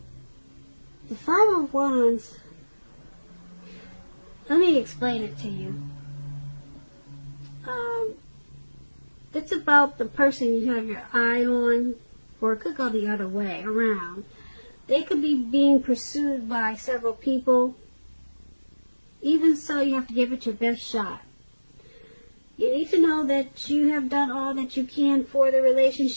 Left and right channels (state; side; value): inverted; both; correlation -1.00